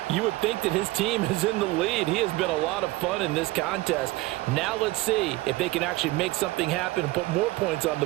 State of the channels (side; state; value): left; quieter; 19.5 dB